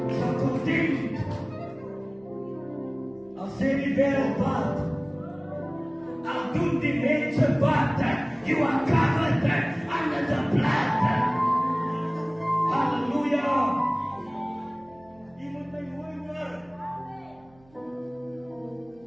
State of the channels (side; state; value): right; noise; hum, 29 dB below the sound